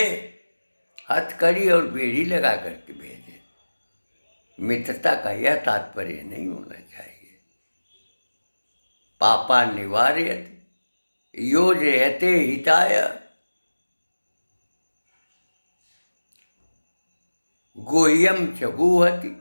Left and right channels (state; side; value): inverted; both; correlation -1.00